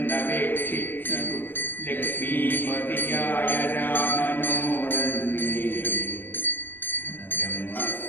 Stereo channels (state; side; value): late; right; 0.094 ms